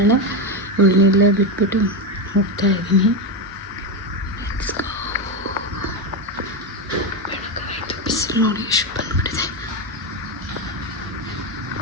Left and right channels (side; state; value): both; normal; correlation 0.11